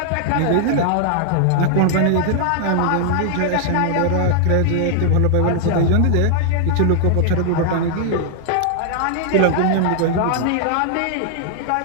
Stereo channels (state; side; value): different; both; correlation 0.00